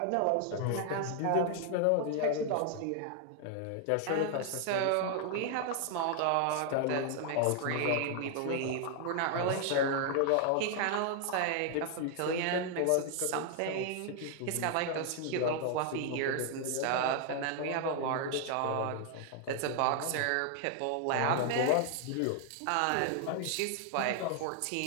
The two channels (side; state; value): both; different; correlation 0.00